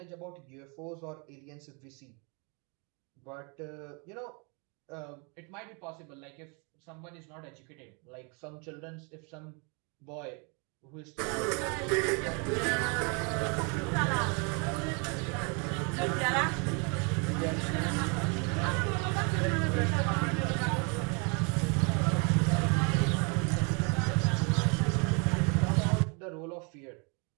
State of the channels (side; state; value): left; quieter; 33.9 dB